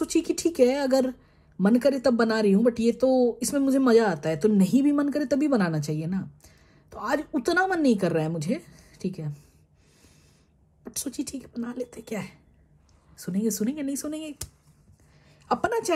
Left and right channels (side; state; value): both; identical; correlation 1.00